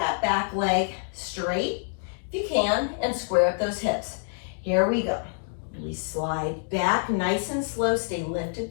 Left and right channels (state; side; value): silent; right; digital silence